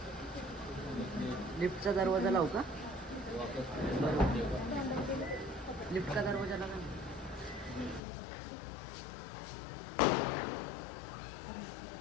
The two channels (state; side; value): drops out; right; at 8.0 s